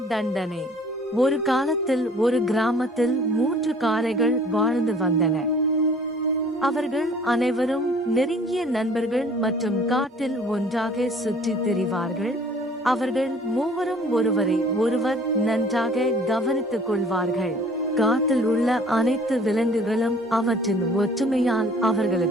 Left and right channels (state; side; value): normal; both; correlation 0.52